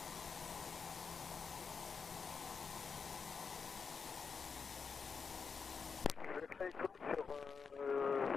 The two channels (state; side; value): quieter; right; 5.5 dB